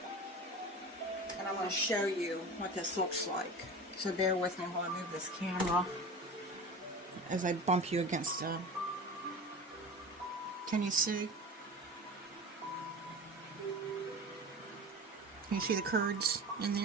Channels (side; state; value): both; normal; correlation 0.33